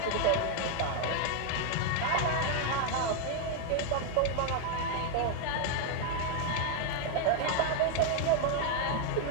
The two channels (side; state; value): both; different; correlation 0.01